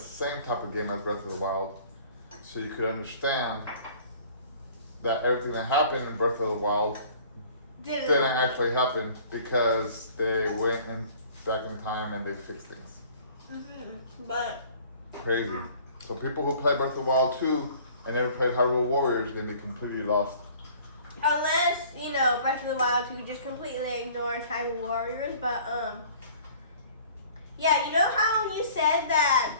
type of game as Breath of the Wild, so you could understand that everything that happened in Breath of the Wild didn't actually happen because they went back in time and they fixed things. Mm-hmm. But crazy. So people who play Breath of the Wild 2 and never played Hyrule Warriors are gonna be completely lost. Unless, Breath of the Wild 2 just completely ignores Hyrule Warriors, but yeah, you know how you said that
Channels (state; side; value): inverted; both; correlation -0.51